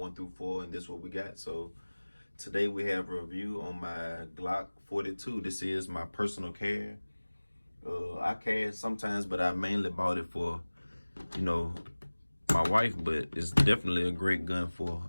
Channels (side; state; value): both; inverted; correlation -1.00